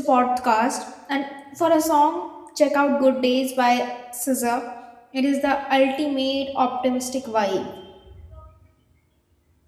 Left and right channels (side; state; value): both; identical; correlation 1.00